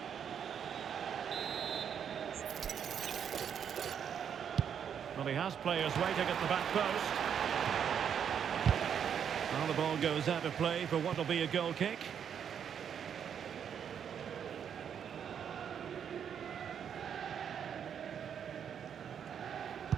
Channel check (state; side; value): quieter; left; 8.2 dB